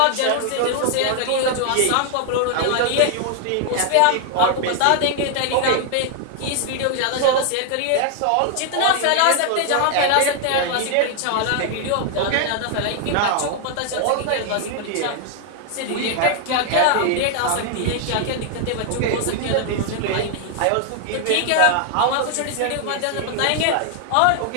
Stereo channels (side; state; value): both; different; correlation 0.00